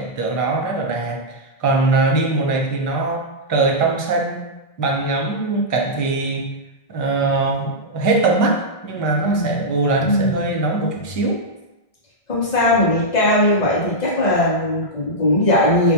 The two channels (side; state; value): right; late; 1.6 ms